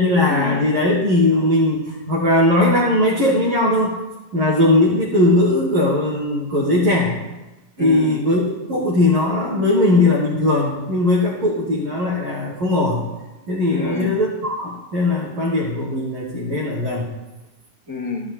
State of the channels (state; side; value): late; left; 11 ms